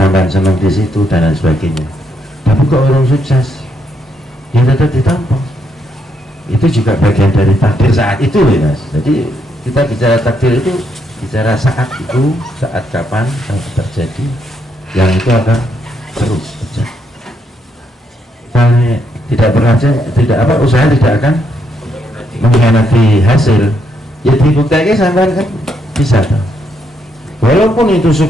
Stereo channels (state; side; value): normal; both; correlation 0.76